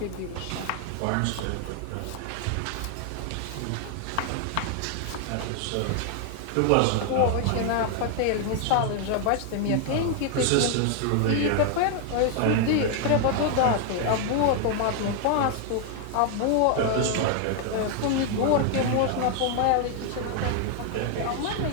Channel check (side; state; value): both; different; correlation 0.00